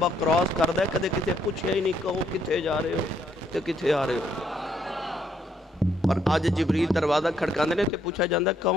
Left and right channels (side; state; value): both; normal; correlation 0.71